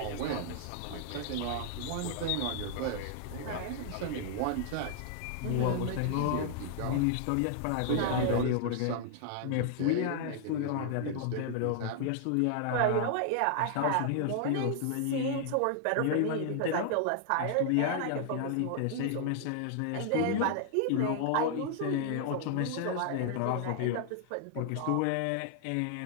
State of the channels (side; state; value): both; different; correlation 0.00